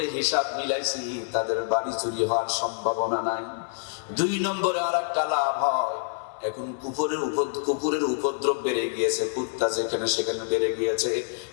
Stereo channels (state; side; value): silent; right; 60 dB below the other